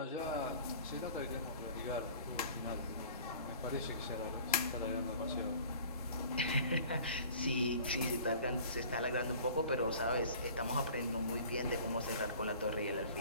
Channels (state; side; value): inverted; both; correlation -0.47